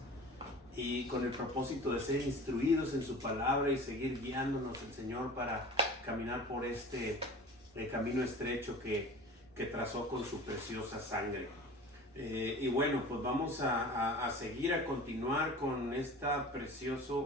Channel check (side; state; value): both; normal; correlation 0.39